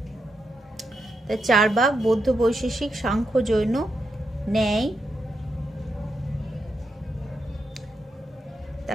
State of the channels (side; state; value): both; normal; correlation 0.84